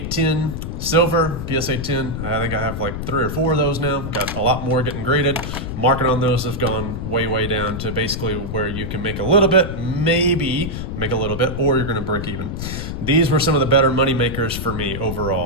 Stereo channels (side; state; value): left; noise; rumble, 5 dB below the sound